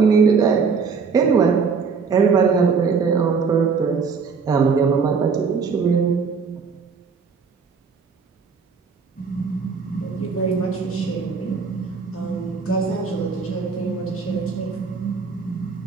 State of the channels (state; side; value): quieter; left; 5.4 dB